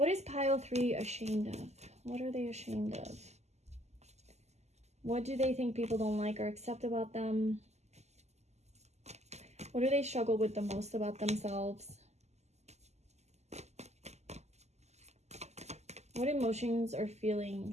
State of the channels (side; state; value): left; late; 0.33 ms